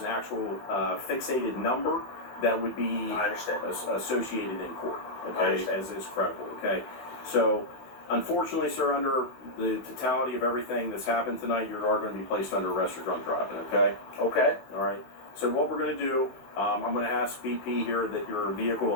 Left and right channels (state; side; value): late; right; 16 ms